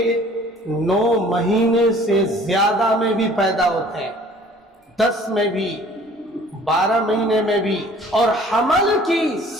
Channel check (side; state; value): both; normal; correlation 0.52